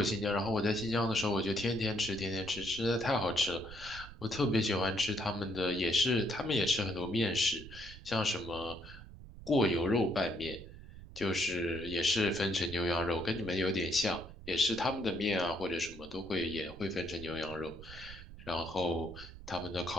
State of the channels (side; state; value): right; noise; rumble, 15 dB below the sound